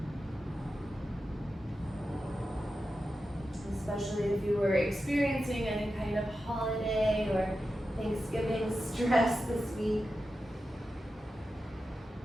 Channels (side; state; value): both; normal; correlation 0.91